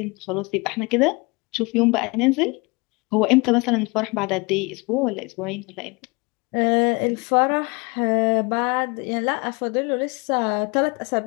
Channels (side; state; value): right; quieter; 27.5 dB